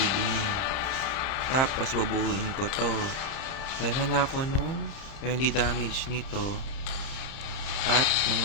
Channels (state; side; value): late; right; 30 ms